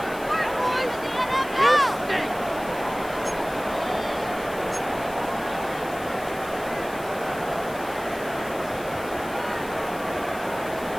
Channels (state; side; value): noise; left; hiss, 17 dB below the sound